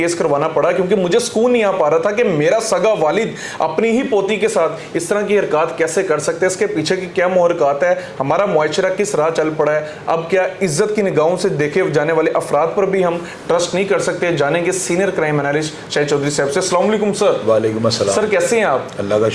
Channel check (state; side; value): identical; both; correlation 1.00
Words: करवाना पड़ा, क्योंकि मुझे सुकून नहीं आ पा रहा था कि मेरा सगा वालिद अपनी ही पोती के साथ इस तरह की हरकत कैसे कर सकते हैं, इसके पीछे की क्या मुहरकत है, हमारा मुआशरा किस राह चल पड़ा है। अब क्या इज्जत की निगाहों से देखे जाने वाले अफराद पर भी हम ट्रस्ट नहीं कर सकते? जानेंगे senior crime analyst Shahid Chaudhary साहब से। अस्सलाम वालेकुम सर। वालेकुम अस्सलाम सर, कैसे हैं आप? अल्लाह का